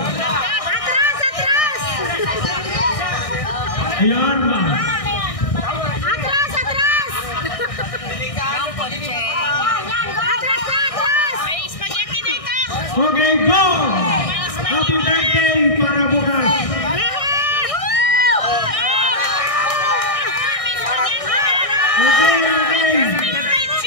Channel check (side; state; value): right; late; 1.6 ms